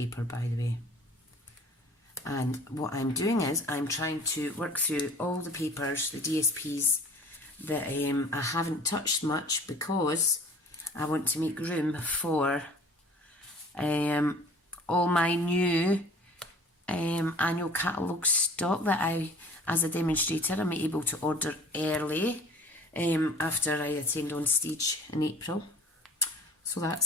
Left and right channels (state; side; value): normal; both; correlation 0.47